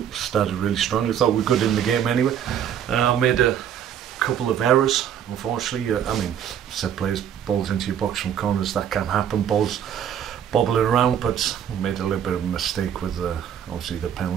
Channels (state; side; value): quieter; left; 9.2 dB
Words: Started really strongly. Thought we were good in the game anyway. Made a couple of errors, unfortunately. I mean, set plays, balls into your box from corners, that can happen. Balls bobbling around, but we made a little bit of a mistake with obviously the